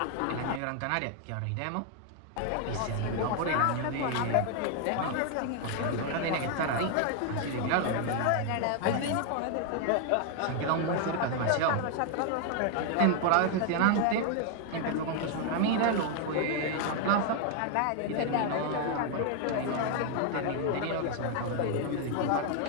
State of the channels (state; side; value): different; both; correlation 0.00